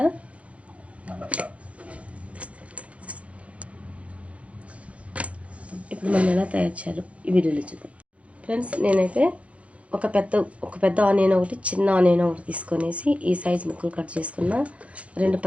ఇప్పుడు మనం ఎలా తయారు చేయాలో ఈ వీడియోలో చూద్దాం. ఫ్రెండ్స్, నేనైతే ఒక పెద్ద ఆనియన్ ఒకటి, చిన్న ఆనియన్ ఒకటి తీసుకొనేసి ఈ సైజ్ ముక్కలు కట్ చేసుకున్న. 2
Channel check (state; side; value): late; left; 0.063 ms